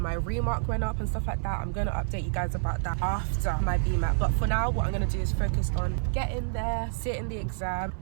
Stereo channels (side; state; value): left; silent; 59 dB below the other